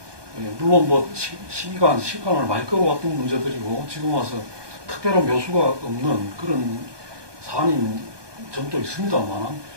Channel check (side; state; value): left; late; 1.2 ms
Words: 물론 뭐 시간을 많이 끌어왔던 문제들이고 지금 와서 특별한 묘수가 없는 그런 사안인 점도 있습니다만